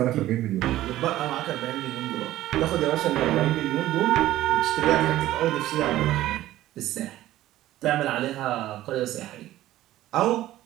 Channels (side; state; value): left; quieter; 14.7 dB